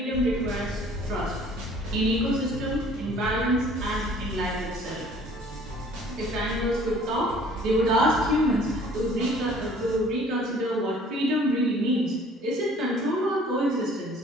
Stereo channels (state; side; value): normal; both; correlation 0.53